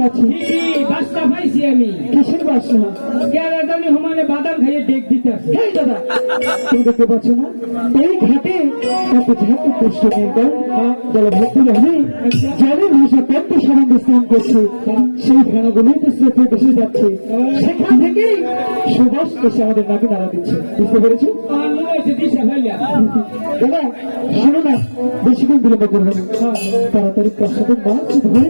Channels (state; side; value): inverted; both; correlation -1.00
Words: গেছি। বাসটা পাইছি আমি। কিসের বাসা? কেরাদানি হমানে বাদাম খাইয়ে ডেক দিতে আসে। দাদা তুমি দেখতে পাচ্ছ না এই ঘাটে এত ঝাঁকু কষ্ট নেই জলভর্তি রহে জলের ভাষা পদ্ম সম্বন্ধে স্নান করছে, সেই ফেনাগুলোই তো স্রোতে ভেসে যাচ্ছে, সেখান থেকে সুবাস এসে আমাদের নাকে নাড়া দিচ্ছে। বুঝতে পেরেছো দাদা? শোনো না, বেশিক্ষণ বিলম্ব করবো না, তাড়াতাড়ি প্রসাদের মাছ ধরে